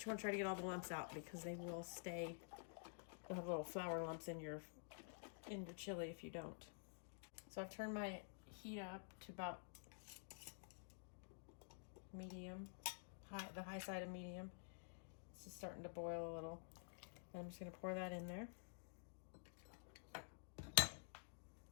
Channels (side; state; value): right; silent; digital silence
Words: you want to try to get all the lumps out because they will stay. You'll have little flour lumps in your chili if you don't. So I've turned my heat up to about medium, the high side of medium. It's just starting to boil a little. And I'm just going to pour that in there.